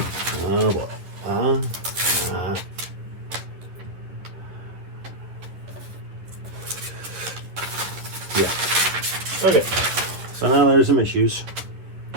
Oh boy. Yeah. Okay. So now there's some issues.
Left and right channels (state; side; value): late; left; 10 ms